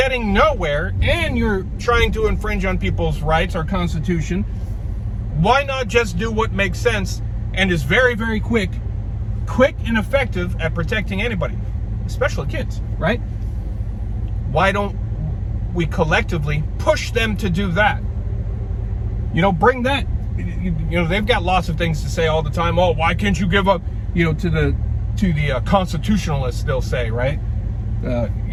nowhere and you're trying to infringe on people's rights, our Constitution? Why not just do what makes sense and is very, very quick and effective at protecting anybody, especially kids, right? Why don't we collectively push them to do that? You know, bring that, you know, they've got lots of things to say all the time. Oh, why can't you give up, you know, to the constitutionalists, they'll say, right? You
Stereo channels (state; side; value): identical; both; correlation 1.00